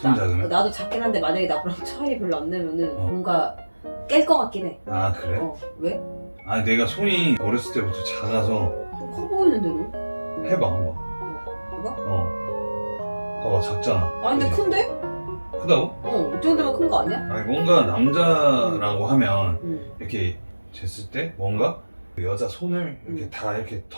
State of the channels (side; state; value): both; inverted; correlation -1.00